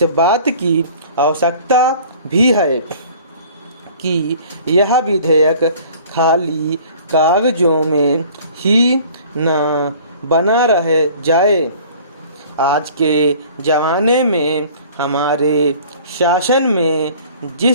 बात की आवश्यकता भी है कि यह विधेयक खाली कागजों में ही न बना रह जाए। आज के ज़माने में हमारे शासन में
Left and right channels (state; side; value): inverted; both; correlation -0.49